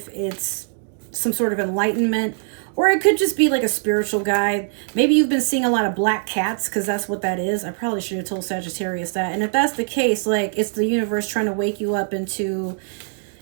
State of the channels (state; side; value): silent; left; digital silence